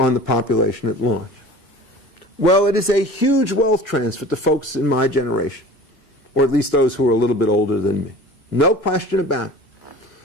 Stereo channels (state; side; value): normal; both; correlation 0.41